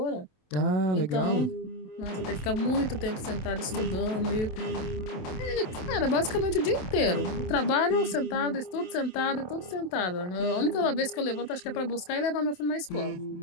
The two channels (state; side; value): late; right; 27 ms